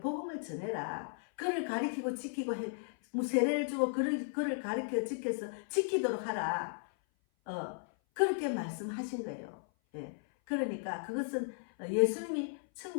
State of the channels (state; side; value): silent; right; 54 dB below the other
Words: 복음을 전해라. 그를 가리키고 지키고 세례를 주고 그를 가리켜 지키도록 하라. 그렇게 말씀하신 거예요. 예. 그러니까 그것은 예수님이